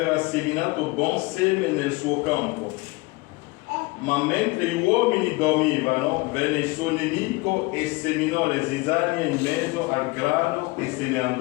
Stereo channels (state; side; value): quieter; right; 23.8 dB